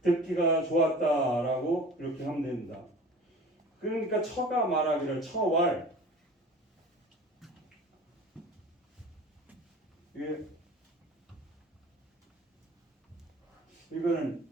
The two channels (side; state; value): both; normal; correlation 0.41